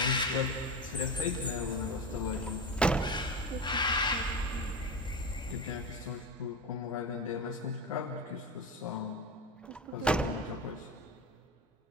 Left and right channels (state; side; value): normal; both; correlation 0.22